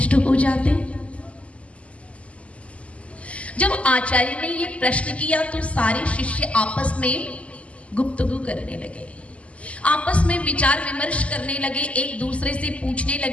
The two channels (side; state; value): right; late; 0.063 ms